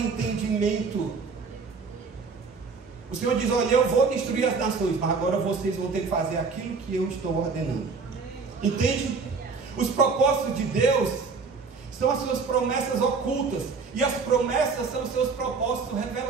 O Senhor diz: olha, eu vou destruir as nações, mas agora vocês vão ter que fazer aquilo que eu estou ordenando. Entende? Os propósitos de Deus são as suas promessas ocultas, e as promessas são os seus propósitos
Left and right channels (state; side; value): quieter; left; 4.8 dB